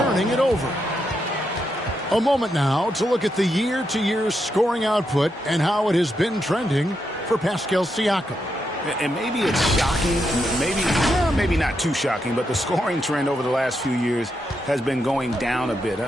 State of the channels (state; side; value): normal; both; correlation 0.82